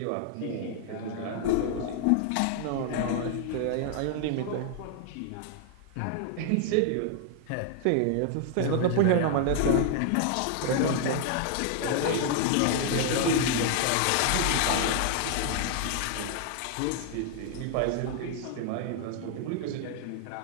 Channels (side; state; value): both; different; correlation 0.00